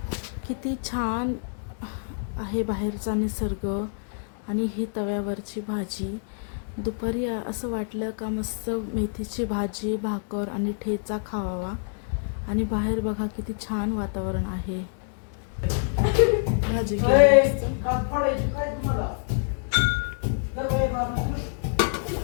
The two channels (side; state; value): right; silent; digital silence